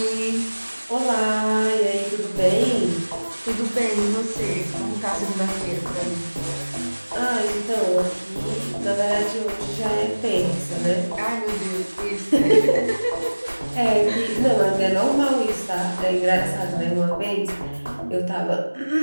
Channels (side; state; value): both; inverted; correlation -1.00